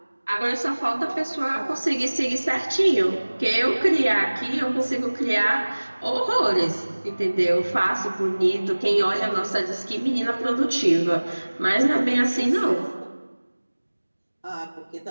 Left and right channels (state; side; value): inverted; both; correlation -1.00